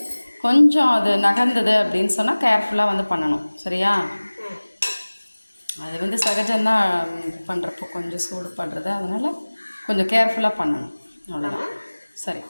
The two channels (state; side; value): inverted; both; correlation -1.00